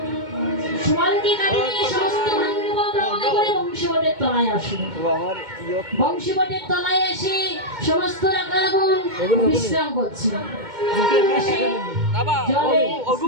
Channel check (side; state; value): left; late; 2.2 ms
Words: সুবলকে কাটিয়ে সমস্ত ভান্ডব রওনা করে বংশীবটের তলায় আসে। বংশীবটের তলায় এসে সমস্ত রাখালগণ বিশ্রাম করছে।